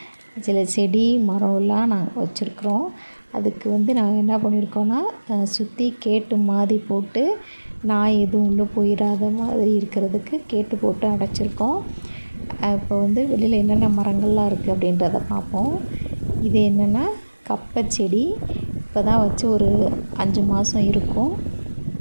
சில செடி மரம்லாம் நாங்கள் வச்சுருக்குறோம். அதுக்கு நாங்கள் என்ன பண்ணியிருக்கோன்னா, சுற்றி கேட்டு மாதிரி போட்டு நாய் எதுவும் உள்ளே போயிடாத மாதிரி இருக்கிறதுக்கு கேட்டு போட்டு அடைச்சிருக்கோம். இப்போ வெளியில் என்னென்ன மரங்கள்லாம் இருக்குது அப்படின்றத பார்ப்போம். இது என்னென்னா கப்பை செடி. இப்போ தான் வச்சு ஒரு 5 மாதம் இருக்கும்.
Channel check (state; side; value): inverted; both; correlation -1.00